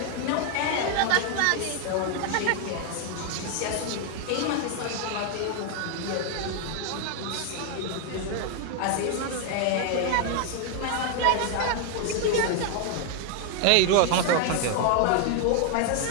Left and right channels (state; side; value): different; both; correlation 0.00